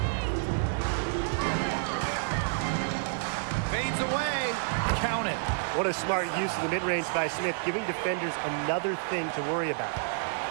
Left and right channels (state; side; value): silent; left; digital silence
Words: Fades away. Count it. What a smart use of the mid-range by Smith, giving defenders another thing to worry about.